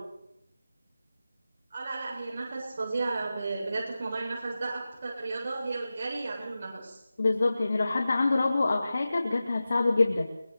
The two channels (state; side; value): inverted; both; correlation -0.94